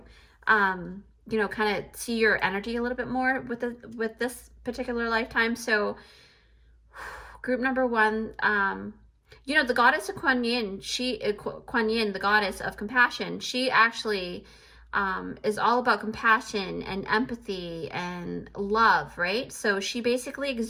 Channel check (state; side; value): identical; both; correlation 1.00